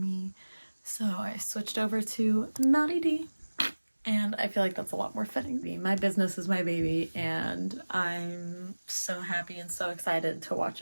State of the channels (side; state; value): both; inverted; correlation -1.00